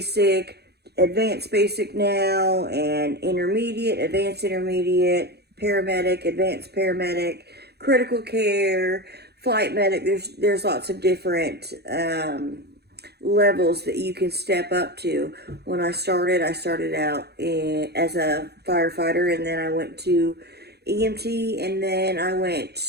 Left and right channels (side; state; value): left; late; 0.48 ms